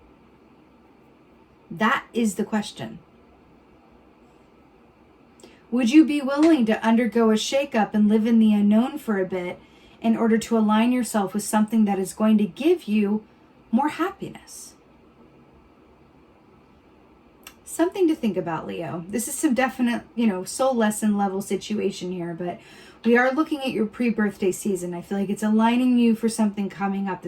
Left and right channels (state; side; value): identical; both; correlation 1.00